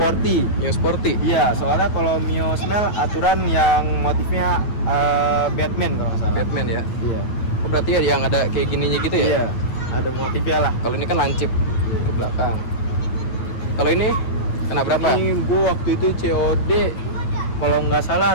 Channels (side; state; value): right; late; 9.2 ms